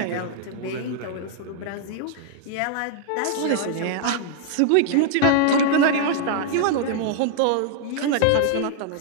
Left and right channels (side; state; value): both; different; correlation -0.01